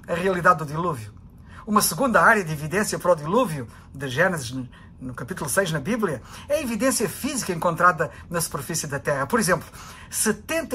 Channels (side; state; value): both; identical; correlation 1.00